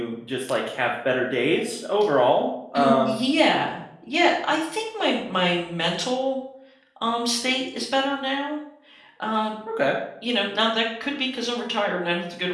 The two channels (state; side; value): identical; both; correlation 1.00